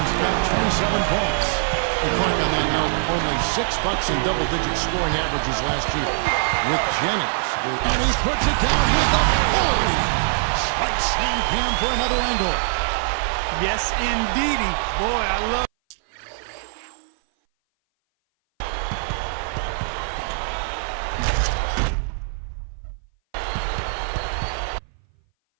got 27 points. And Clark, on that note, only 6 Bucks in double-digit scoring averages last year with Jennings. And he puts it down with authority. Spike slam Cam for another angle. Yes, indeedy. Boy, I love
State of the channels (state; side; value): silent; left; 58 dB below the other